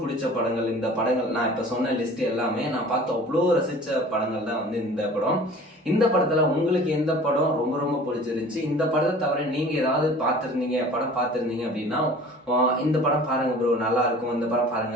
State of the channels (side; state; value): both; normal; correlation 0.45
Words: பிடிச்ச படங்கள் இந்த படங்கள். நான் இப்போ சொன்ன லிஸ்ட் எல்லாமே நான் பார்த்து அவ்வளோ ரசித்த படங்கள் தான் வந்து இந்த படம். இந்த படத்தில் உங்களுக்கு எந்த படம் ரொம்ப பிடிச்சிருந்துச்சு, இந்த படத்தை தவிர நீங்கள் ஏதாவது படம் பார்த்துருந்தீங்க அப்படின்னா இந்த படம் பாருங்க ப்ரோ, நல்லா இருக்கும், இந்த படம்